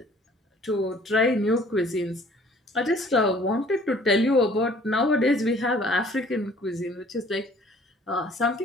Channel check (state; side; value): normal; both; correlation 0.55